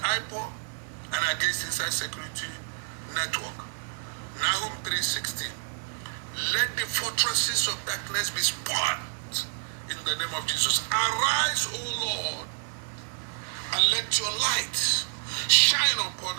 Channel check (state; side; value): silent; left; 59 dB below the other